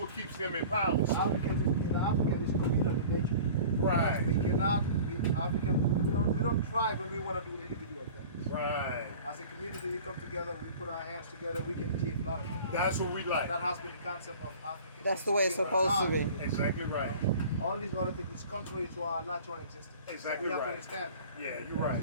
keeps them in power. So. African is communal in nature. Right. We cannot, we don't thrive when we want to do individual things. Right. As a community, we come together, we put our hands together, we can achieve a lot of things. That's what we like. That has been the concept of Africa. That's the way it's supposed to be. Exactly right. All these other things is contrary to our natural existence. Exactly we have right. to understand that. Yeah, you're right.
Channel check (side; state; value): both; inverted; correlation -0.42